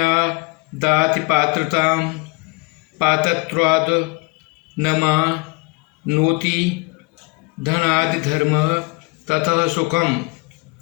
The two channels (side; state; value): right; quieter; 27.6 dB